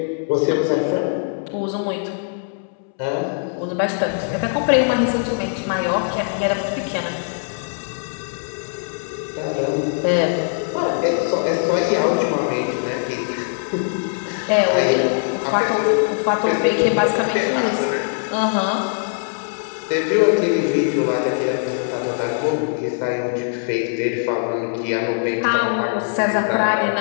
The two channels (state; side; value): silent; right; 65 dB below the other